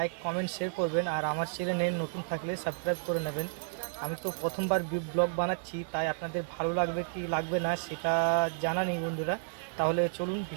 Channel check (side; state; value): left; silent; 57 dB below the other